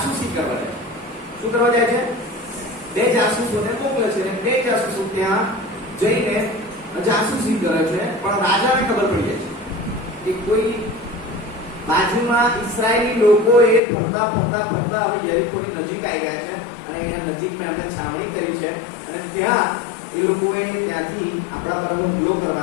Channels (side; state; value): right; drops out; at 13.8 s